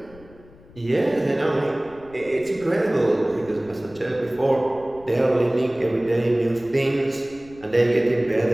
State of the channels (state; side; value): noise; left; rumble, 23 dB below the sound